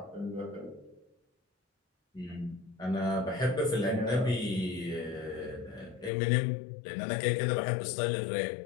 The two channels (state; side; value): drops out; right; at 6.1 s